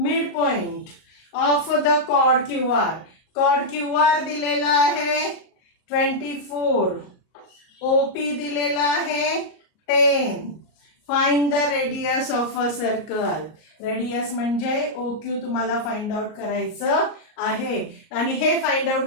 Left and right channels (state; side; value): late; right; 38 ms